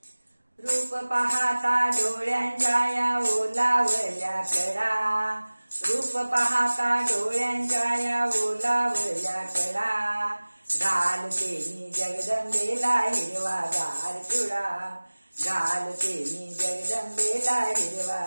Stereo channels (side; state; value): both; inverted; correlation -1.00